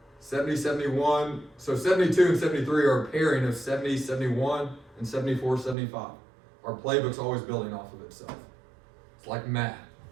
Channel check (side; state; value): left; drops out; at 5.8 s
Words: 70, 71. So 72 and 73 are a pairing of 70, 71, and 74, 75. Our playbook's always building off of itself. It's like math.